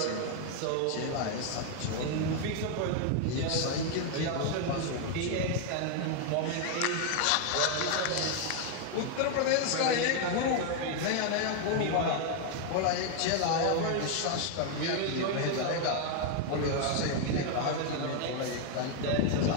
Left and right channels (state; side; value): different; both; correlation 0.00